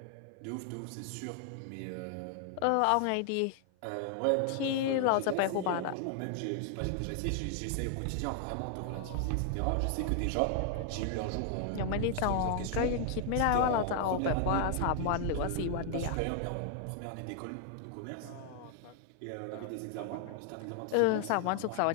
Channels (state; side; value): different; both; correlation 0.00